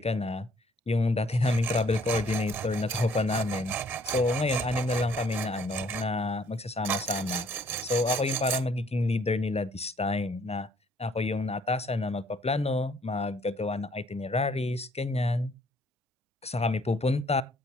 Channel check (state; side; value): normal; both; correlation 0.63